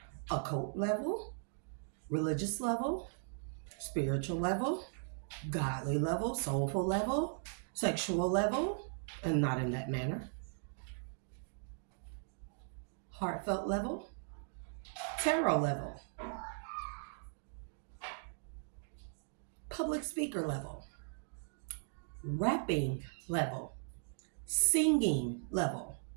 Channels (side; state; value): left; silent; digital silence